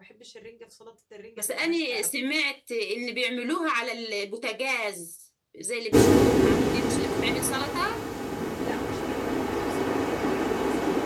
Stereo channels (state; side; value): identical; both; correlation 1.00